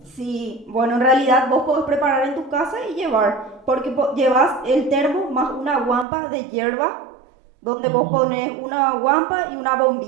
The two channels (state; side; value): drops out; left; at 6.1 s